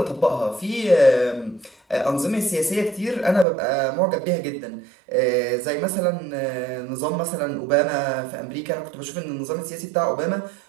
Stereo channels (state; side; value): drops out; left; at 3.5 s